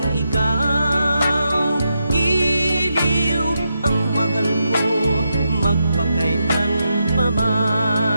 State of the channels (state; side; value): inverted; both; correlation -0.85